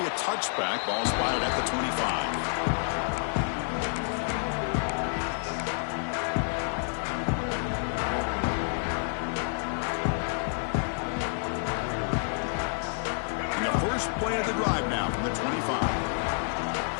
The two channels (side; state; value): right; silent; 57 dB below the other